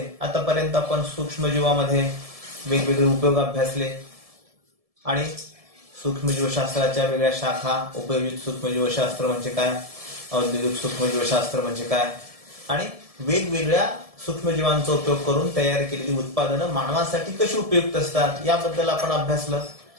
आतापर्यंत आपण सूक्ष्मजीवामध्ये वेगवेगळे उपयोग अभ्यासले आणि सूक्ष्मजीवशास्त्राच्या वेगळ्या शाखा, उपयोजित सूक्ष्मजीवशास्त्र म्हणजे काय, औद्योगिक सूक्ष्मजीवशास्त्र म्हणजे काय आणि वेगवेगळ्या सूक्ष्मजीवांचा उपयोग करून तयार केलेली उत्पादनं मानवासाठी कशी उपयुक्त असतात याबद्दल आपण अभ्यासलं.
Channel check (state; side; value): late; left; 1.7 ms